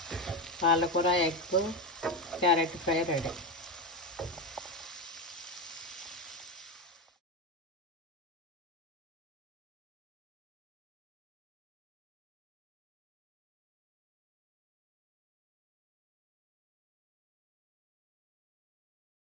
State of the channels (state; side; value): normal; both; correlation 0.14